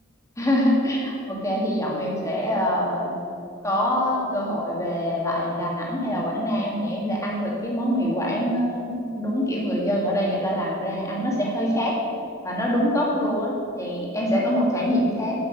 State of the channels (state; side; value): normal; both; correlation 0.43